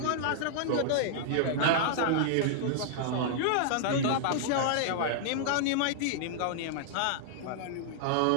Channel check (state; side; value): different; both; correlation -0.01